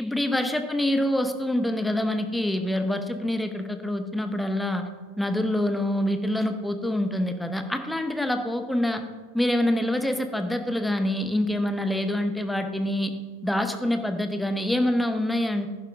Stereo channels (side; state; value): both; normal; correlation 0.86